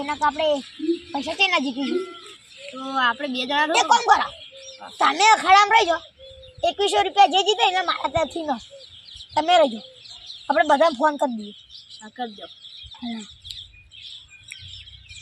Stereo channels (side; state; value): both; identical; correlation 1.00